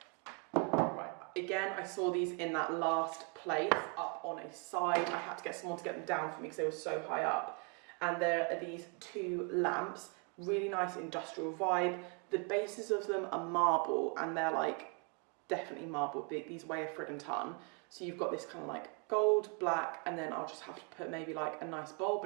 Right, again, I saw these in that last place up on a side. I had to get someone to get them down for me because they were so high up. And there are these 2 lamps, really nice industrial vibe. The bases of them are marble, and they're like definitely marble. These weigh a friggin' ton. So you've got this kind of like gold, black, and then I'll just have to put maybe like a nice bulb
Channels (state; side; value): quieter; left; 35.5 dB